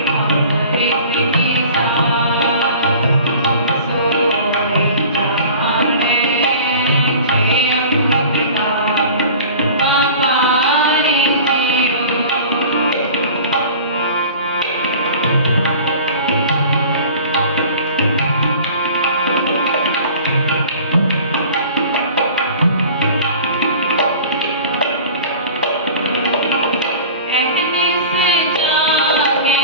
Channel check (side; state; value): both; inverted; correlation -0.42